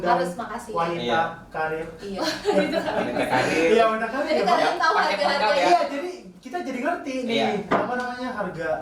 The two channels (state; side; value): identical; both; correlation 1.00